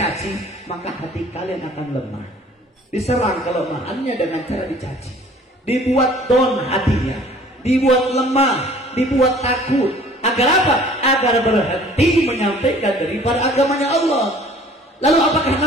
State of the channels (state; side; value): normal; both; correlation 0.52